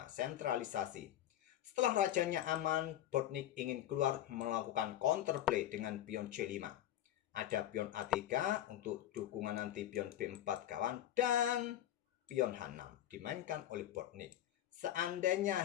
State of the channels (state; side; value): quieter; right; 12.3 dB